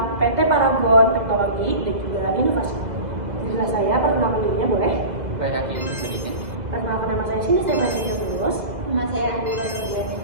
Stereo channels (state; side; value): late; left; 2.0 ms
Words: PT Paragon Teknologi dan juga Inovasi. Inilah saya, perkenalkan dirinya boleh? Perkenalkan nama saya Sini Stefania Tulus. Nama saya Adila Nurjani.